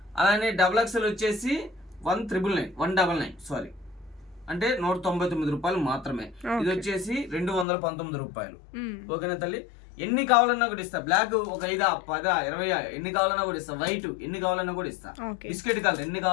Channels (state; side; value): drops out; right; at 7.7 s